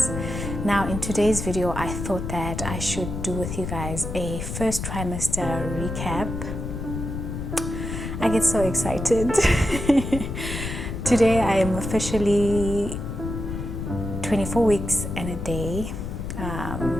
Now in today's video, I thought that I should do with you guys a first trimester recap. I get so excited. Today I am officially 24 weeks and a day.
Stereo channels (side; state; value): left; noise; rumble, 5 dB below the sound